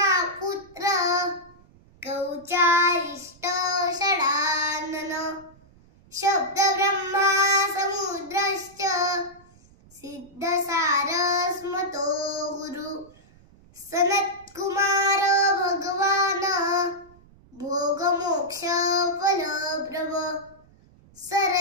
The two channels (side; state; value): right; noise; rumble, 27 dB below the sound